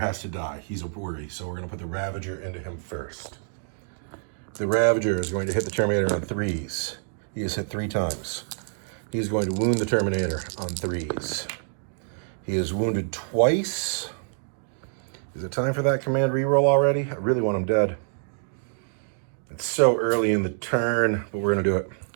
to die. He's a worry, so we're going to put the Ravager into him first. The Ravager is going to hit the Terminator on 3s. He has hit 3 times. He's going to wound the Terminator on 3s. He is wounded twice. Is it time for that command reroll already? I really want him dead. It's so early in the turn, but we're going to do it.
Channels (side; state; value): left; silent; digital silence